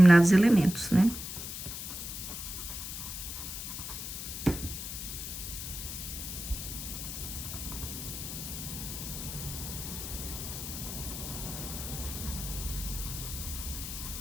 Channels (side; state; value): left; noise; hiss, 6 dB below the sound